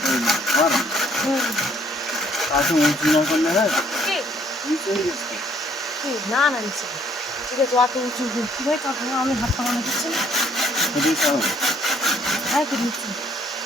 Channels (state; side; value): normal; both; correlation 0.64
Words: না না নিচে ঠিক আছে, অত উঁচু কি ভাই কথা আমি হাত পাকানো দিচ্ছি না। হ্যাঁ কি দিচ্ছি।